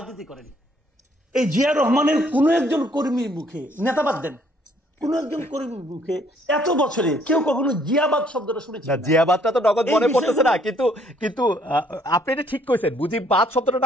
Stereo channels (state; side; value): normal; both; correlation 0.64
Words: করেন। এই জিয়া রহমানের কোন একজন কর্মীর মুখে, নেতাবাদ দেন, কোন একজন কর্মীর মুখে এত বছরে কেউ কখনো জিয়াবাদ শব্দটা শুনেছে? জিয়াবাদটা তো নগদ মনে পড়তেছে না, কিন্তু আপনি এটা ঠিক কইছেন। মুজিববাদ শব্দটা